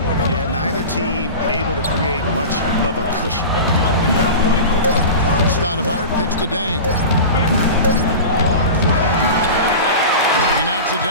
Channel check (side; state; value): both; inverted; correlation -0.31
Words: Yeah, neither team able to create much of a cushion. Stoudemire kicks to Dang. He knocks it